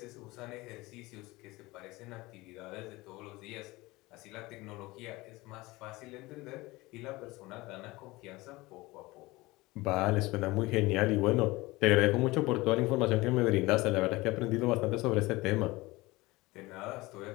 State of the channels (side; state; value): right; quieter; 21.1 dB